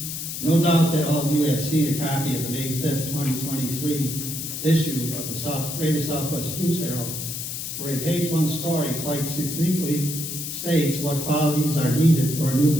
No doubt that all of you have seen a copy of the May 5th, 2023 issue of the Greater Southwest News Herald, where a page one story quite succinctly states what qualities are needed for a new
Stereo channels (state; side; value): noise; left; hiss, 6 dB below the sound